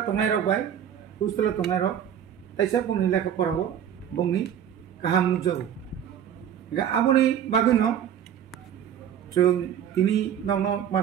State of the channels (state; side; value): quieter; left; 9.5 dB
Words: तंनाय रक बाय हस्टेल तंनाय रक ताइसा बुंनि लेखा फराव बुंनि गाहाम नुजागो गा आबनि बागैनो जों तिनि नंनो